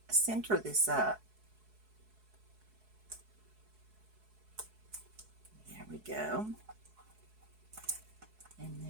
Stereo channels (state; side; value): late; left; 4.7 ms